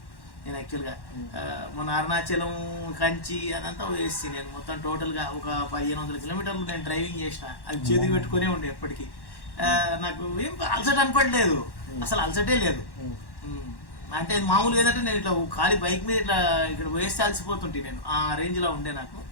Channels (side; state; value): right; late; 1.1 ms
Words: నేను యాక్చువల్గా. మన అరుణాచలం కంచి అదంతా వేసి నేను మొత్తం టోటల్గా ఒక 1500 కిలోమీటర్లు నేను డ్రైవింగ్ చేసిన. అది చేతికి పెట్టుకునే ఉండే ఎప్పటికీ. నాకు ఏం అలసట అనపడలేదు, అసలు అలసటే లేదు. అంటే మామూలుగా ఏంటంటే నేను ఇట్లా ఖాళీ బైక్ మీద ఇట్లా ఇక్కడ వేస్తే అలసిపోతుంటే నేను ఆ రేంజ్లో ఉండే. నాకు